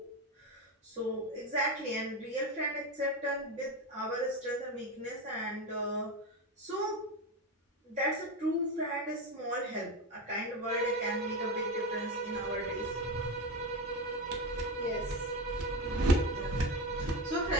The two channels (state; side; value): normal; both; correlation 0.18